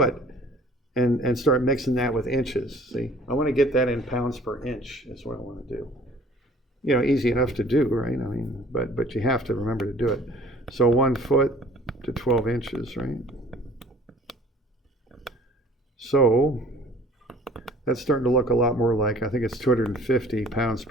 and start mixing that with inches. See, I want to get that in pounds per inch is what I want to do. You know, easy enough to do, right? I mean, but you have to remember to do it. So 1 foot to 12 inches, right? So that's starting to look a lot more like, I think it's 250 pounds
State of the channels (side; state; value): both; normal; correlation 0.51